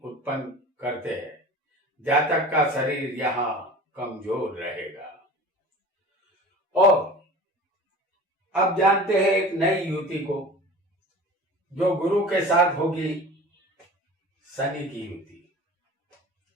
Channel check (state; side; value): normal; both; correlation 0.39